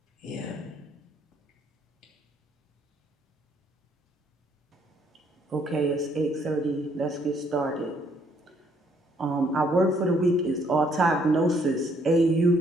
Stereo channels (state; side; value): normal; both; correlation 0.67